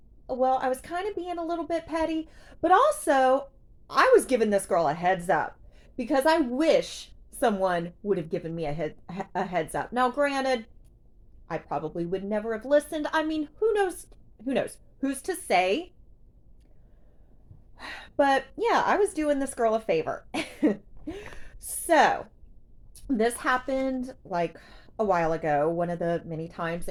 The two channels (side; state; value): both; identical; correlation 1.00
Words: well, I was kind of being a little bit petty, but also I was giving this girl a heads up because I wish someone would have given me a heads up. Now, granted, I probably would never have listened. I mean, who knows? Who knows? Who's to say? But yeah, I was doing this girl a favor. So, this happened like a while ago, one of the many times